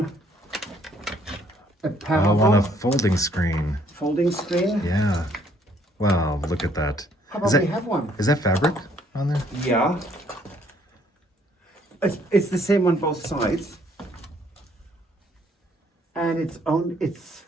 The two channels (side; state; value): both; normal; correlation 0.65